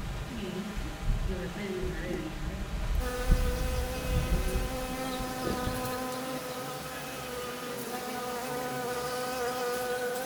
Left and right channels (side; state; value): both; identical; correlation 1.00